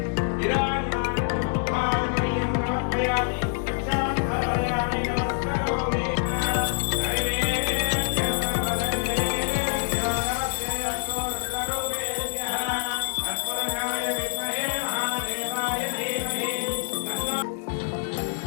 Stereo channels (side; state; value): right; silent; digital silence